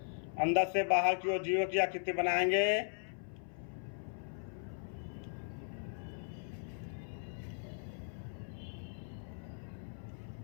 अंदर से बाहर की ओर जीरो की आकृति बनाएंगे।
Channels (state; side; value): silent; right; 52 dB below the other